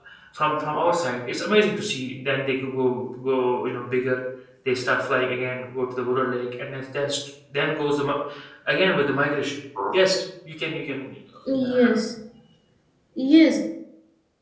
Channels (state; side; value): identical; both; correlation 1.00